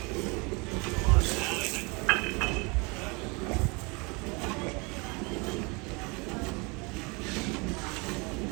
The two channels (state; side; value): quieter; left; 28.8 dB